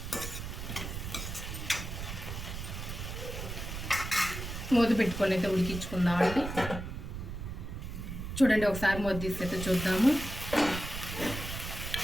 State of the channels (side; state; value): right; noise; rumble, 7 dB below the sound